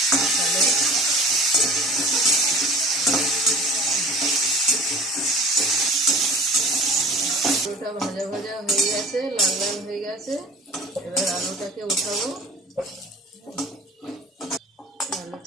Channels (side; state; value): both; normal; correlation 0.42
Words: তাহলে আলুটা ভাজা ভাজা হয়ে গেছে, লাল লাল হয়ে গেছে। এবার আলুটাকে উঠাবো।